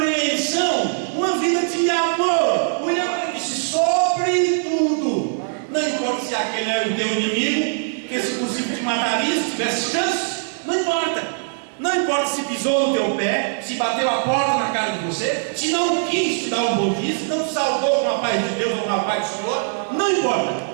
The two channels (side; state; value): left; silent; digital silence